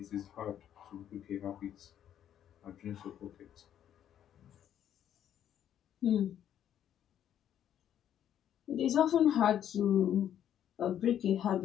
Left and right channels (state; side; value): quieter; right; 10.2 dB